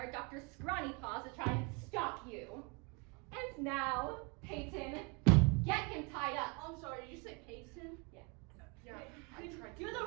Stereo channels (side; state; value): left; quieter; 31.8 dB